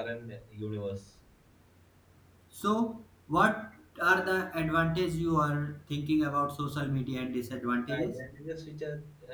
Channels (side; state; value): both; identical; correlation 1.00